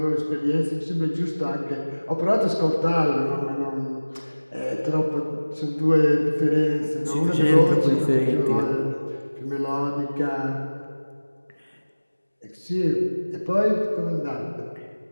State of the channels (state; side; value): inverted; both; correlation -1.00